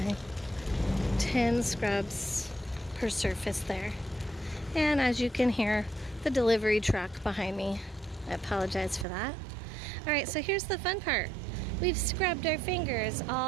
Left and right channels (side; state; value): left; drops out; at 9.1 s